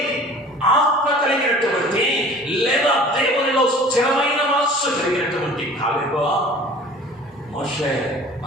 ఆత్మ కలిగినటువంటి లేదా దేవునిలో స్థిరమైన మనస్సు కలిగినటువంటి కాలేబు మోషే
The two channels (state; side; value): normal; both; correlation 0.46